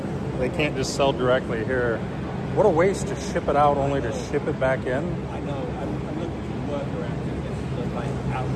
they can't just sell directly here. What a waste to ship it out only to ship it back in. I know. I'm looking for workarounds to this, like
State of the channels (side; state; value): both; identical; correlation 1.00